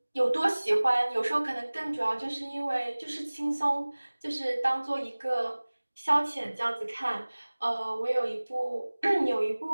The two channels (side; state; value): both; inverted; correlation -1.00